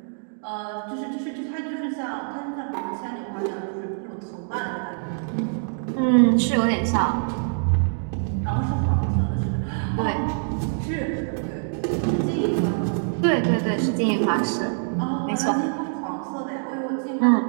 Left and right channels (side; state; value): left; silent; digital silence